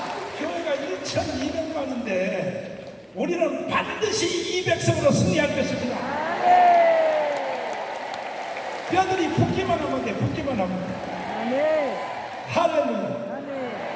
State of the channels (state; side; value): identical; both; correlation 1.00